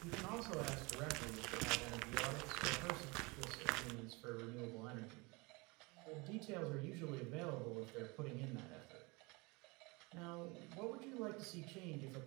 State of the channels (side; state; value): left; quieter; 26.5 dB